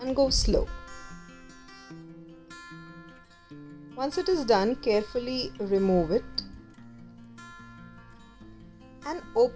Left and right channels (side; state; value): both; identical; correlation 1.00